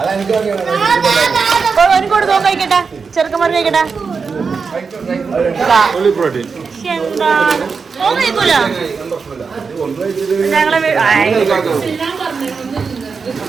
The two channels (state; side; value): quieter; left; 5.2 dB